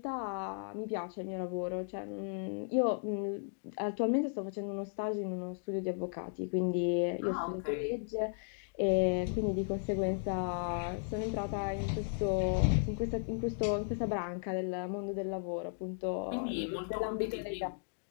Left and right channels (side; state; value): right; silent; digital silence